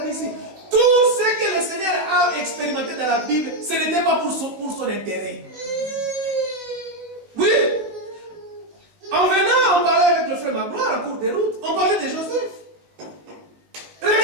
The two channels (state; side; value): late; left; 18 ms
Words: dit ici. Tout ce que le Seigneur a expérimenté dans la Bible, ce n'était pas pour son intérêt. Oui. En venant, on parlait avec le frère Magloire en cours de route, on parlait de Joseph.